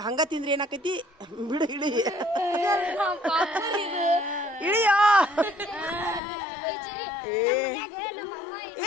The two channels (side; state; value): right; drops out; at 6.2 s